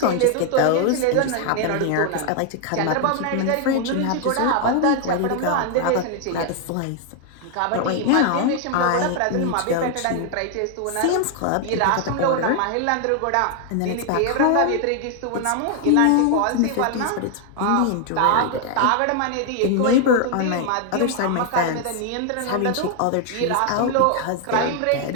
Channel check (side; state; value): both; different; correlation 0.00